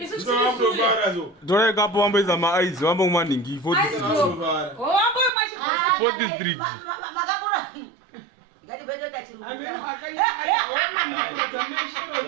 Dore kapo wambeza ma-eyes, wambo mwaningi 4th Street. Makakura. Ngati beta chirunguka.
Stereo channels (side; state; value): left; drops out; at 5.3 s